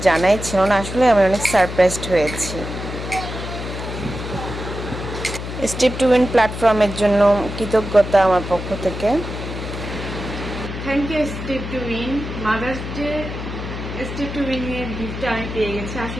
জানাই ছিল না। আসলে আমি অনেক সারপ্রাইজড হয়েছি। স্টেপ টু উইন প্ল্যাটফর্মের জন্য কৃতজ্ঞতা আমার পক্ষ থেকে। Thank you Step to Win. Mother's Day Step to Win এর গিফটটা আমি পেয়ে গেছি।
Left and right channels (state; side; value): noise; left; hum, 7 dB below the sound